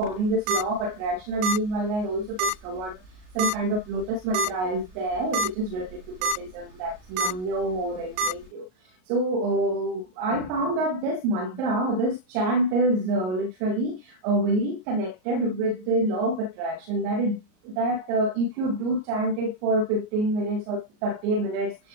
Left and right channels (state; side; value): late; left; 38 ms